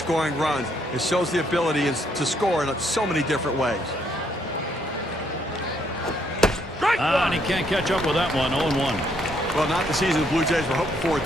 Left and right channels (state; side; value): normal; both; correlation 0.71